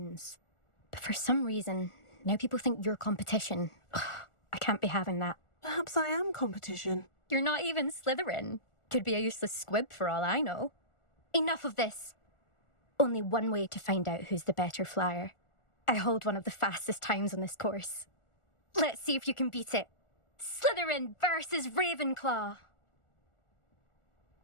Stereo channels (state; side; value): late; right; 1.4 ms